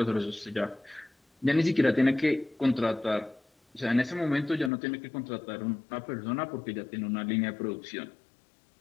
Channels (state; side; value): drops out; right; at 4.7 s